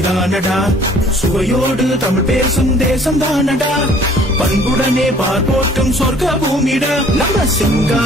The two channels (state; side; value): normal; both; correlation 0.55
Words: சுவையோடு தமிழ் பேசும் தேசம் தானடா, பண்புடனே பார்ப்போட்டும் சொர்க்க பூமிடா. நம்ம